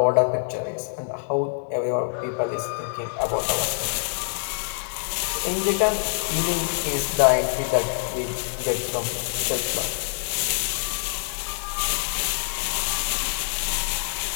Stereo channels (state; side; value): silent; right; 62 dB below the other